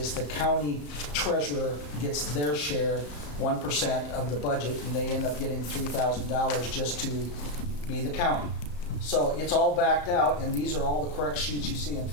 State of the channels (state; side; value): late; right; 34 ms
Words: the county treasurer gets their share, 1% of the budget, and they end up getting $3,000 just to be the county. So it's all backed out, and these are all the correct sheets you see in